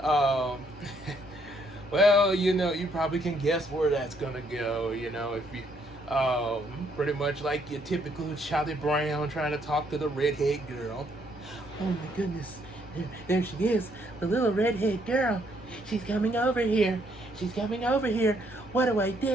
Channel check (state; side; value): normal; both; correlation 0.70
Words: Well, you probably can guess where that's gonna go. If you, pretty much like your typical Charlie Brown trying to talk to the redhead girl. Oh my goodness, there she is, the little redhead girl. She's coming over here. She's coming over here. What do I